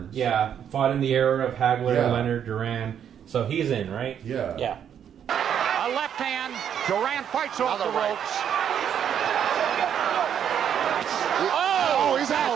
Yeah, fought in the era of Hagler, Yeah. Leonard, Duran. So he's in, right? Yeah. Yeah. A left hand. Durant fights off the ropes. Oh, he's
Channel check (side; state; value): left; quieter; 8.9 dB